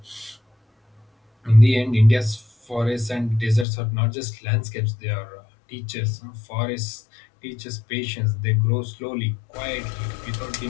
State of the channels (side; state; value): right; drops out; at 3.7 s